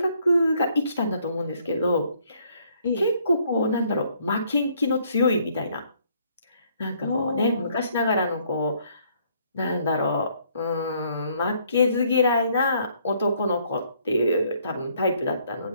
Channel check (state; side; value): inverted; both; correlation -0.66